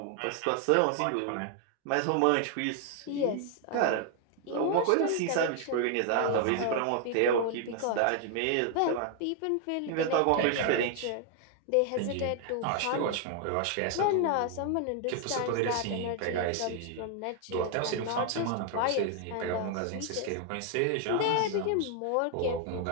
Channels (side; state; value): both; different; correlation 0.00